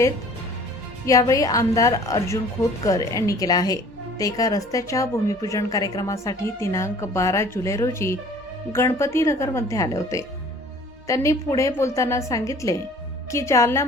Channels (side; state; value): both; normal; correlation 0.50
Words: यावेळी आमदार अर्जुन खोतकर यांनी केला आहे. ते एका रस्त्याच्या भूमिपूजन कार्यक्रमासाठी दिनांक 12 जुलै रोजी गणपती नगरमध्ये आले होते. त्यांनी पुढे बोलताना सांगितले की